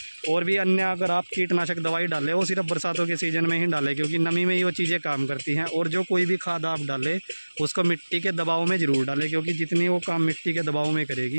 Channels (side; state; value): both; inverted; correlation -1.00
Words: और भी अन्य अगर आप कीटनाशक दवाई डालें, वो सिर्फ बरसातों के सीज़न में ही डालें, क्योंकि नमी में ही वो चीज़ें काम करती हैं। और जो कोई भी खाद आप डालें उसको मिट्टी के दबाव में ज़रूर डालें, क्योंकि जितनी वो काम मिट्टी के दबाव में